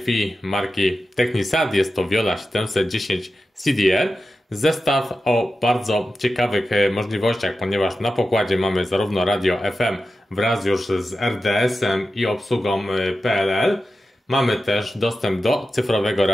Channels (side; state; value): both; normal; correlation 0.92